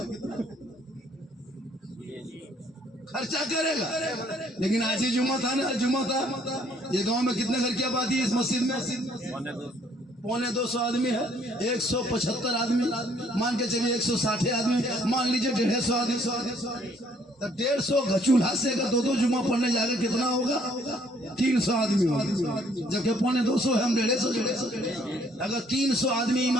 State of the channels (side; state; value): both; normal; correlation 0.64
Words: खर्चा करेगा। लेकिन आज ही जुम्मा था ना, जुम्मा था। ये गांव में कितने घर की आबादी है इस मस्जिद में? 250 आदमी है, 175 आदमी, मान के चलिए 160 आदमी, मान लीजिए 150 आदमी, तो 150 चूल्हा से अगर 2 जुम्मा पढ़ने जाकर कितना होगा? 300 आदमी होगा, जबकि 250 है, हम 150। अगर 300 आदमी